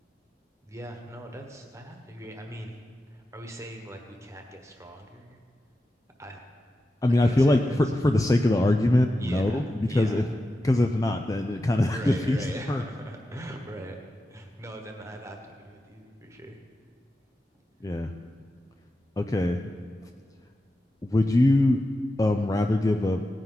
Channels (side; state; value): both; normal; correlation 0.91